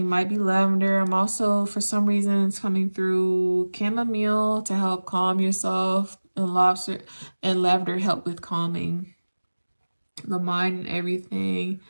might be lavender. I'm also, for some reason, it's coming through chamomile to help calm yourself, and lobster and lavender help with calming the mind and everything.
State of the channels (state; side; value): inverted; both; correlation -1.00